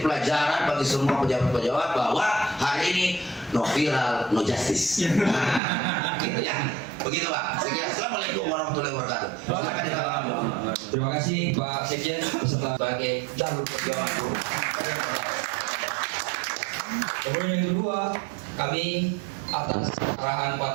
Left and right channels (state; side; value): drops out; left; at 5.6 s